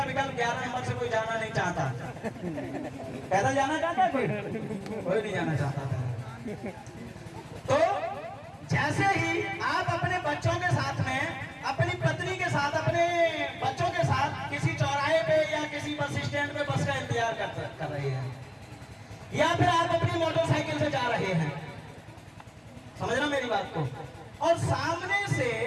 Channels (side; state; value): both; identical; correlation 1.00